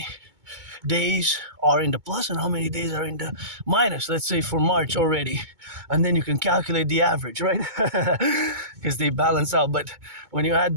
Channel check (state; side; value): late; left; 2.2 ms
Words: days are in the plus and how many days are in the minus, let's say for March already, and then you can calculate the average, right? Because they balance out. But when you add